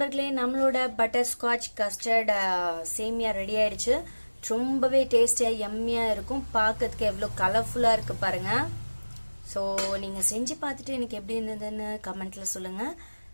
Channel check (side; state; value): both; inverted; correlation -1.00